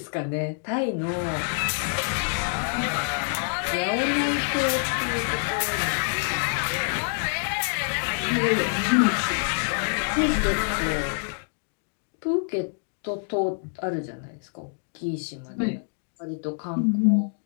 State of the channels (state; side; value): silent; right; digital silence